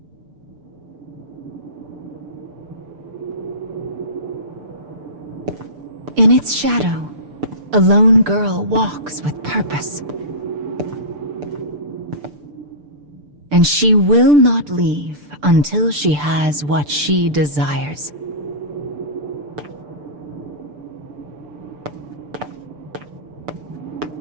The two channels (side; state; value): left; late; 6.8 ms